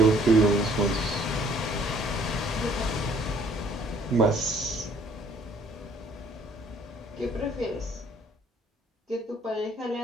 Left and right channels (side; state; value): both; normal; correlation 0.60